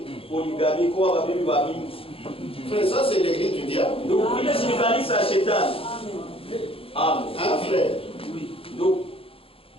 poligami kwa babibi wa mingi. Frère, ça c'est l'église du diable. Ndugu, ile si kanisa ya shetani. Amen. Hein, frère? Ndugu,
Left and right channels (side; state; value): right; late; 0.27 ms